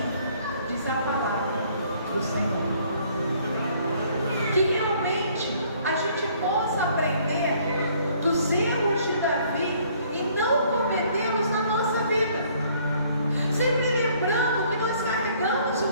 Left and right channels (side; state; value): both; inverted; correlation -0.61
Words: diz a palavra do Senhor. Que realmente a gente possa aprender dos erros de Davi e não cometê-los na nossa vida. Sempre lembrando que nós carregamos